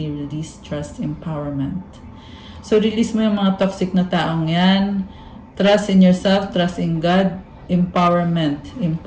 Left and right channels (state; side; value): identical; both; correlation 1.00